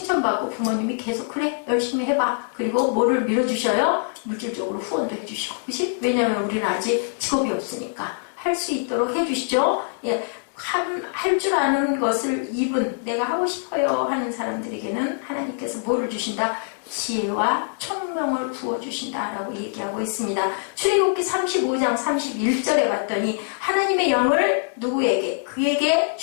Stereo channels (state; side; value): silent; right; digital silence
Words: 부모님이 계속 그래 열심히 해봐. 그리고 뭐를 밀어주셔요? 물질적으로 후원도 해주시고. 그치? 왜냐하면 우리는 아직 직업이 없으니까 할 수 있도록 해주시죠. 예. 할 줄 아는 것을 입은 내가 하고 싶어요 하는 사람들에게는 하나님께서 뭐를 주신다? 지혜와 총명을 부어주신다라고 얘기하고 있습니다. 출애굽기 35장 31절에 봤더니 하나님의 영을 누구에게? 그에게